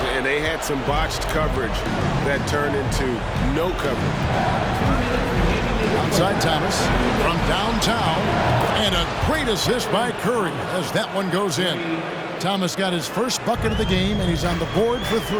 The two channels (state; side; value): identical; both; correlation 1.00